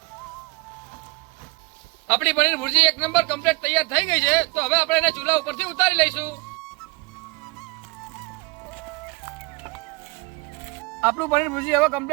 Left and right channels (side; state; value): left; quieter; 27.1 dB